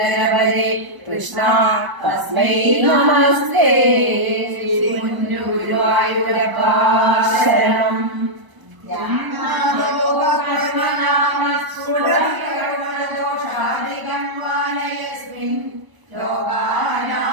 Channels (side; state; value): left; late; 1.0 ms